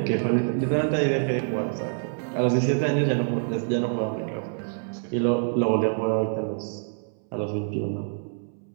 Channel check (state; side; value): silent; left; 61 dB below the other